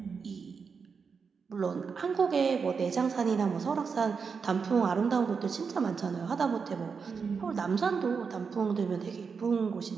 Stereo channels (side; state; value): left; quieter; 5.6 dB